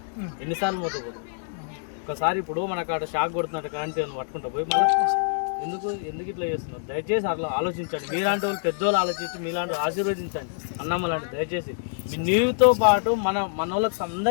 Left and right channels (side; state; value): right; silent; 61 dB below the other